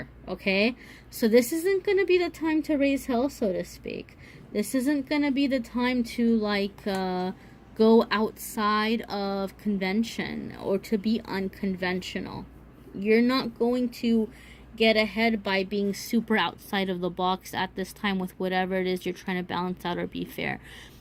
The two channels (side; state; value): both; identical; correlation 1.00